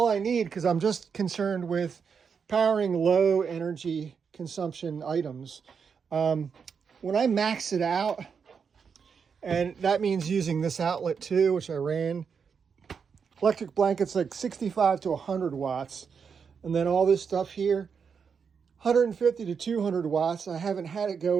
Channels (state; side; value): quieter; left; 6.3 dB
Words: I need, because I'm just concerned with powering low energy consumption items. When I max it out, and that means using this outlet too, which I ran, electric blanket's like 65 to 100 watts. And then all this stuff here, 150 to 200 watts. I haven't had it